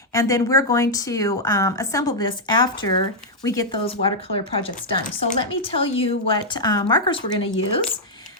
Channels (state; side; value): normal; both; correlation -0.04